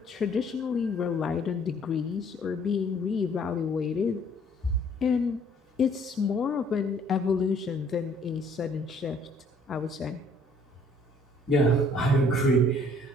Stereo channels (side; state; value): both; normal; correlation 0.60